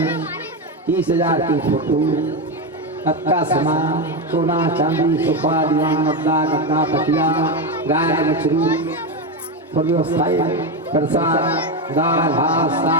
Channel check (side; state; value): both; normal; correlation 0.12